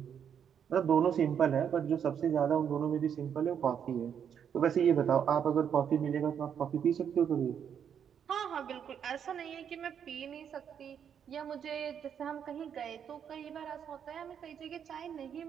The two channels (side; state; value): left; quieter; 8.2 dB